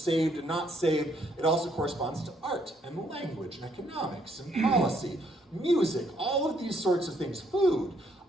and not saved. It also corresponds to art and language and economics and policy, music, all of these sorts of things, food.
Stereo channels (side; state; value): both; normal; correlation 0.70